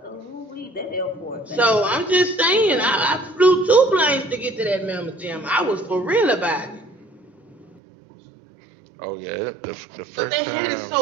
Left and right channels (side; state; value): left; drops out; at 7.8 s